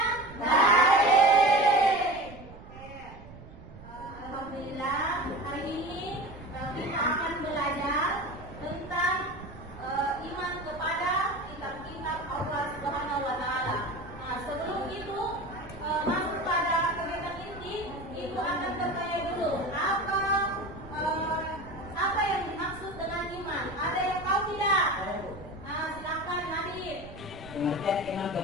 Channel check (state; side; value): noise; right; rumble, 17 dB below the sound